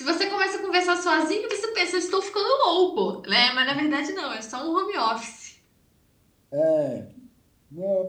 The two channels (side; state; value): both; identical; correlation 1.00